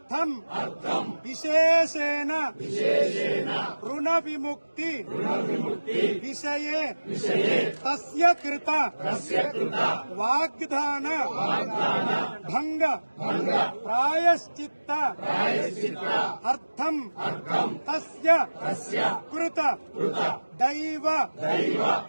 విశేషేణ రుణ విముక్తి విషయే తస్య కృత వాగ్దాన భంగ ప్రాయశ్చిత్త అర్థం తస్య కృత దైవ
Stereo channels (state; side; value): inverted; both; correlation -1.00